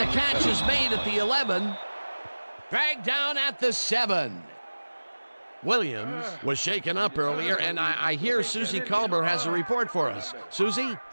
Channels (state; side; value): inverted; both; correlation -1.00